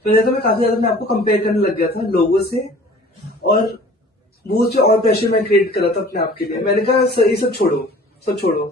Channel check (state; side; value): normal; both; correlation 0.48